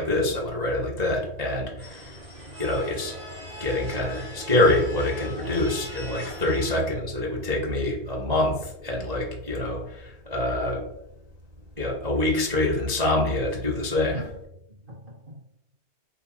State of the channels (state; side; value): late; left; 2.0 ms